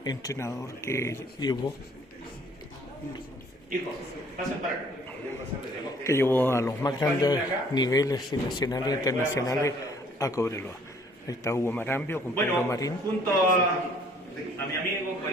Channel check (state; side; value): normal; both; correlation 0.59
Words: entrenador que llevó a los más grandes niveles nacionales e internacionales a Cobreloa. Ahí está Hugo Marambio con Pedro Marín. Junto a mi amigo,